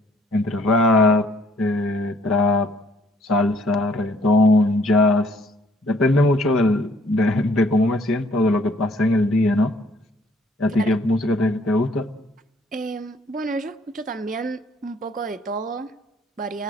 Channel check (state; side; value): normal; both; correlation 0.62